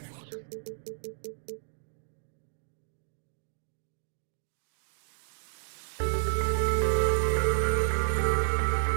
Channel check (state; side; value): silent; left; digital silence